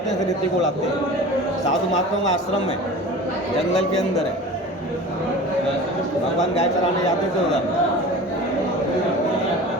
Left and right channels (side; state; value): both; normal; correlation 0.37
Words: हैं, फिर रेती को उड़ाते हैं। साधु महात्माओं का आश्रम है, जंगल के अंदर है। भगवान गाय चराने जाते थे उधर।